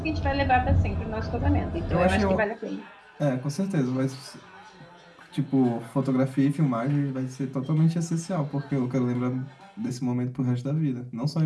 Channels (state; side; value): identical; both; correlation 1.00